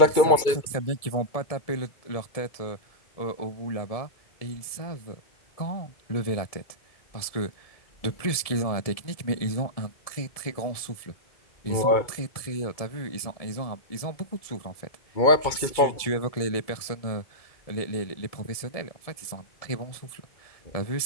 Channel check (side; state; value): right; late; 1.7 ms